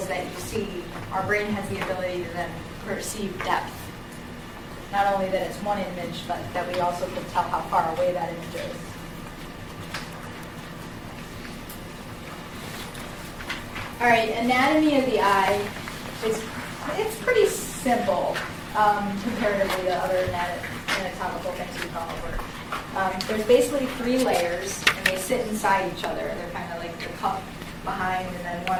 that you see, our brain has the ability to then perceive depth. Not only that it's one image, but that we also can tell how far away that image is. All right, anatomy of the eye it's pretty simple comparatively to other anatomical things we've gone over. There's basically three layers, and they sit inside each other. They're kind of like the cup behind, and then one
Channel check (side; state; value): both; identical; correlation 1.00